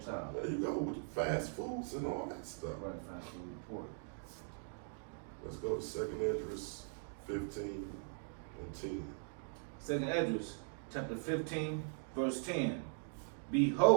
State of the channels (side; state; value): left; silent; digital silence